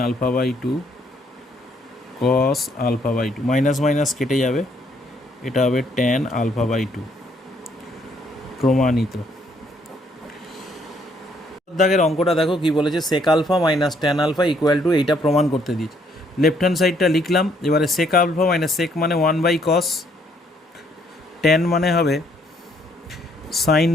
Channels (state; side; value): normal; both; correlation 0.68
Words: alpha by 2 cos alpha by 2, minus minus কেটে যাবে, এটা হবে ট্যান আলফা বাই 2। প্রমাণিত। দাগের অঙ্কটা দেখো কি বলেছে, sec alpha minus tan alpha equal to, এইটা প্রমাণ করতে দিয়েছে। লেফট হ্যান্ড সাইডটা লিখলাম, এবারে সেক আলফা মাইনাস সেক মানে 1 বাই কস, ট্যান মানে হবে সাইন